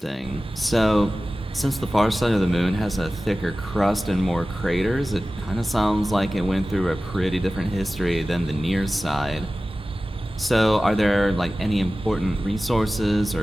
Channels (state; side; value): normal; both; correlation 0.96